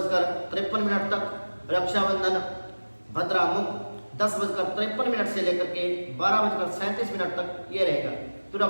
तक। रक्षाबंधन भद्रा मुख 10:53 से लेकर के 12:37 तक ये रहेगा। तो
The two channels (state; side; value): inverted; both; correlation -1.00